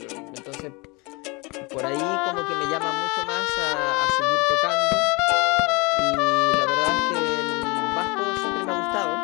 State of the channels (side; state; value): right; quieter; 27.4 dB